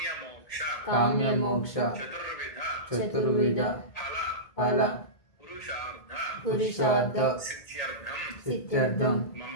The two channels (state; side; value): late; right; 1.8 ms